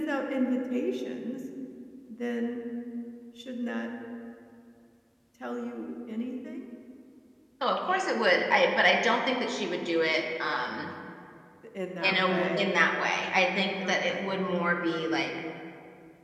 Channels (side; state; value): both; identical; correlation 1.00